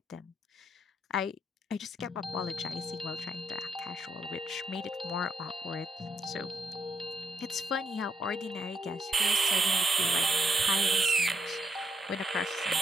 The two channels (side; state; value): both; normal; correlation 0.78